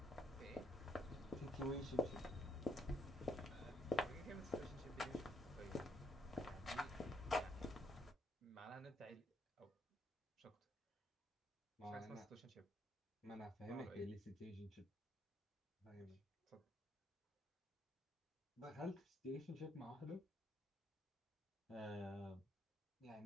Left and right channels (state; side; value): normal; both; correlation 0.74